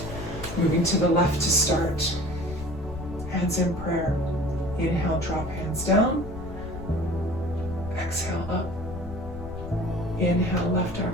Moving to the left to start. Hands in prayer. Inhale, drop hands down. Exhale, up. Inhale, left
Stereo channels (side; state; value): left; noise; rumble, 11 dB below the sound